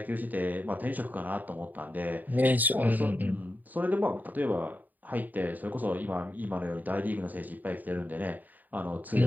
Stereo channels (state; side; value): late; left; 0.084 ms